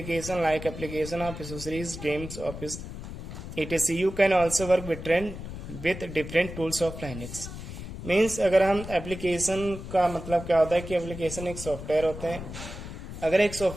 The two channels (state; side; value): noise; left; rumble, 10 dB below the sound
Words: like application of accessories, games, office, etc. You can also work with different tools of Linux. Means अगर हम एप्लीकेशन का मतलब क्या होता है कि एप्लीकेशन एक सॉफ्टवेयर होते हैं. अगर एक